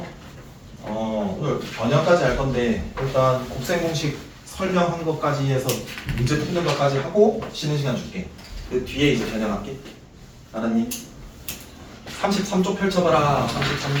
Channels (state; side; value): identical; both; correlation 1.00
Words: 오늘 번역까지 할 건데 일단 곱셈 공식 설명한 것까지 해서 문제 푸는 것까지 하고 쉬는 시간 줄게. 그 뒤에 이제 변형할게. 알았니? 33쪽 펼쳐봐라.